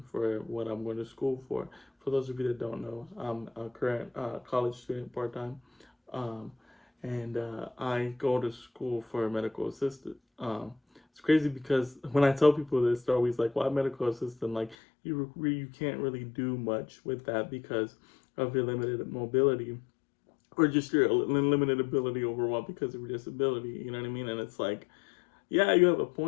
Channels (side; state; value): right; drops out; at 14.8 s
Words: for what I'm going to school for. For those of you that don't know, I'm a current college student part time, um, and I go to school for a medical assistant. It's crazy because when I tell people this, they're always like, "Why medical assistant?" Like you can't really do much with that because of your limited mobility or just your limited ability overall because of your disability. You know what I mean? And it's like, yeah, you have a